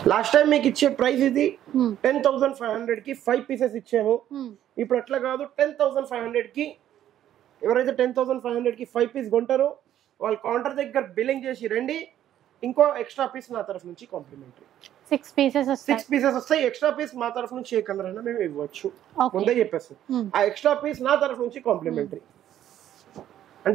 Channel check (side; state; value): left; quieter; 11.5 dB